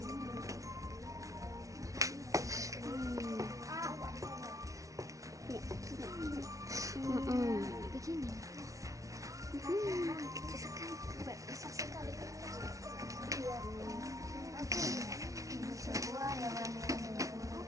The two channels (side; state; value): left; late; 0.16 ms